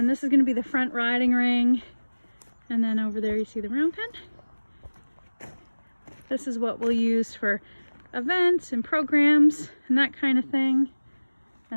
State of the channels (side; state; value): both; inverted; correlation -1.00